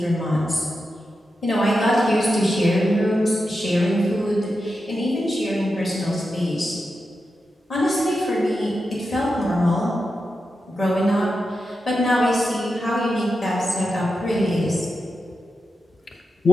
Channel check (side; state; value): both; normal; correlation 0.89